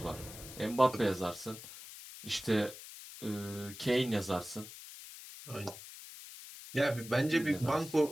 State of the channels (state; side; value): noise; left; hiss, 14 dB below the sound